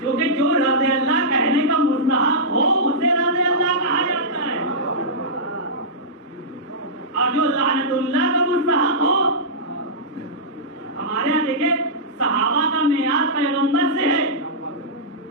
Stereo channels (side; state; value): both; normal; correlation -0.14